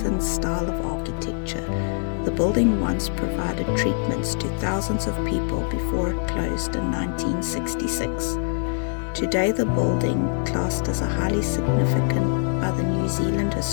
style of architecture, the building once provided treatments to thousands of people before it closed in 1966. Today, the building, classed as a highly significant by the New Zealand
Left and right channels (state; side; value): silent; right; digital silence